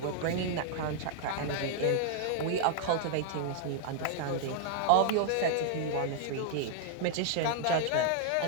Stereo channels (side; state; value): both; different; correlation 0.00